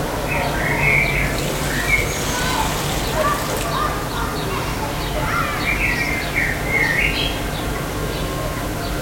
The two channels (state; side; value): identical; both; correlation 1.00